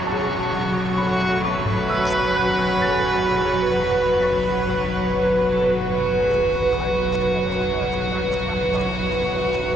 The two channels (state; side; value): normal; both; correlation 0.75